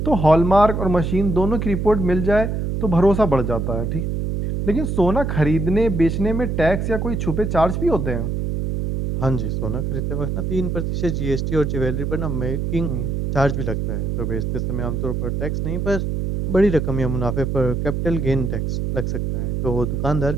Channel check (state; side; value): noise; right; hum, 1 dB below the sound